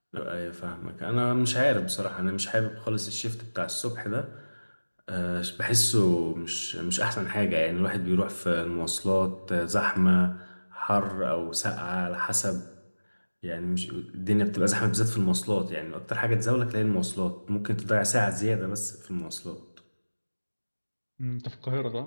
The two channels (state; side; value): inverted; both; correlation -1.00